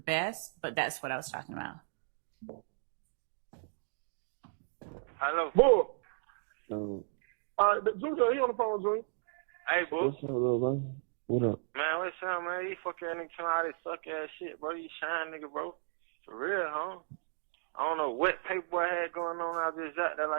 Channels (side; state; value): left; silent; digital silence